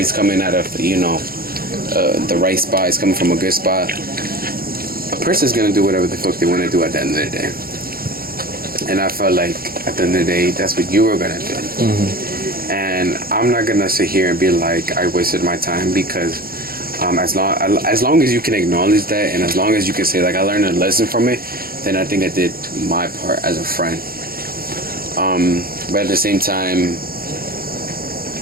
coming out of, you know, the right spot, it's coming from a good spot, a person's gonna do whatever the fuck they want to do at the end of the day. And I felt like at the end of the day, that's what you were gonna do. Mm-hmm. And I'm not gonna sit here and be like, I wasted my time, because as long as you can acknowledge that, and as long as you can say, like, I learned a lesson from it, then I think I did my part as a friend. But at the same time,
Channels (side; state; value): left; late; 0.43 ms